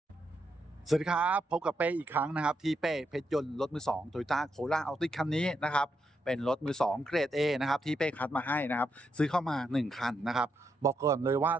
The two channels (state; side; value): normal; both; correlation 0.81